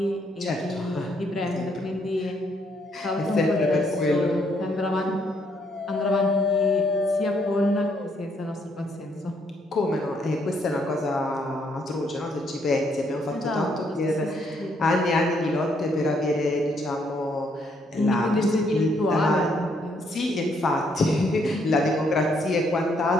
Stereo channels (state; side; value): normal; both; correlation 0.71